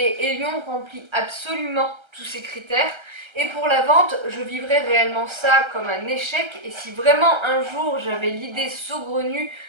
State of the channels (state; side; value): late; left; 1.3 ms